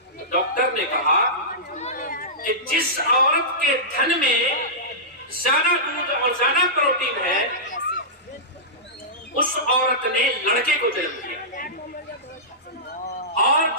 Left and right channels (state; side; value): normal; both; correlation -0.16